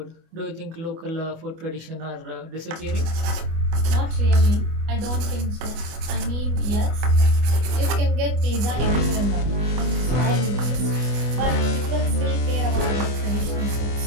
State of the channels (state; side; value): late; left; 24 ms